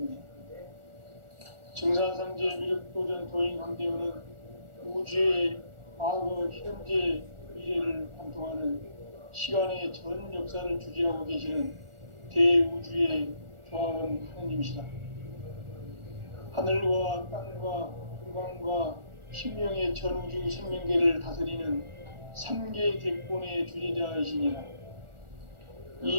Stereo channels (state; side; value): late; left; 1.4 ms